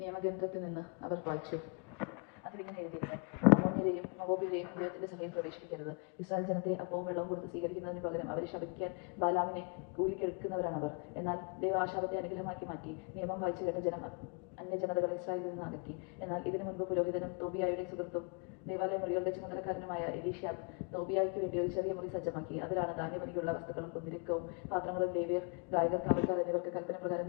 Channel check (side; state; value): right; quieter; 36.9 dB